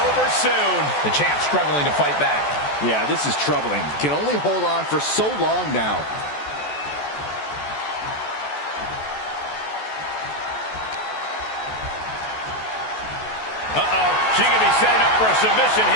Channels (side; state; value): right; late; 14 ms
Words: soon. The champ struggling to fight back. Yeah, this is troubling. Can only hold on for so long now. Uh-oh, she could be setting up for a submission